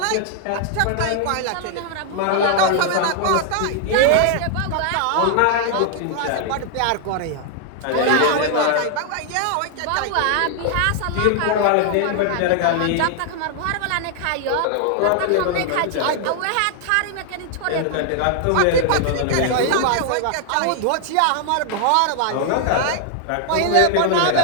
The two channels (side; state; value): both; different; correlation 0.00